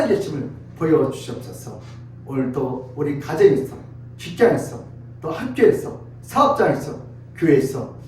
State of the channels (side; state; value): both; identical; correlation 1.00